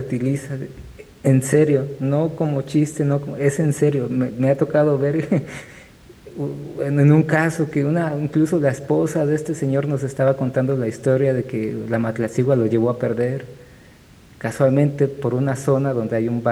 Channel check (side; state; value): both; identical; correlation 1.00